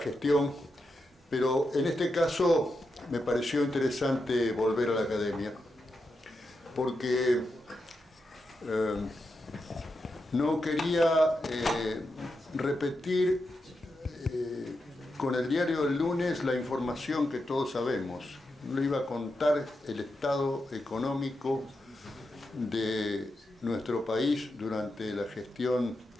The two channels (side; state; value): both; normal; correlation 0.87